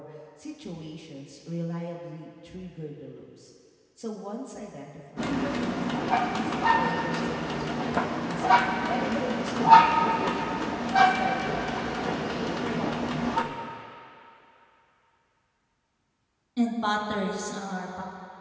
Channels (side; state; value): both; identical; correlation 1.00